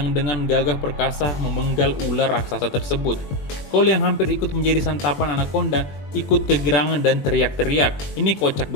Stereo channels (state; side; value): late; right; 21 ms